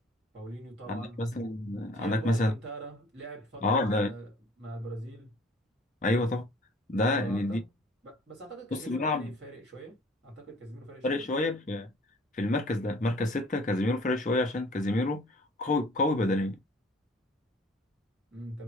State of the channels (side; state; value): both; normal; correlation 0.52